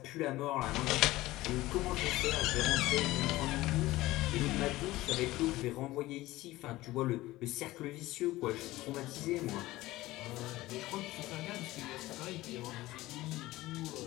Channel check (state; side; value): quieter; right; 17.8 dB